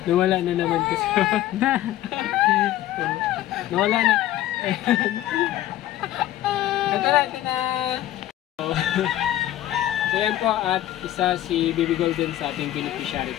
Nawala na naman kasi. Nawala na. Ito na. So yan po, at isa si Baby Golden sa ating beneficiary.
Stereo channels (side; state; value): right; quieter; 13.7 dB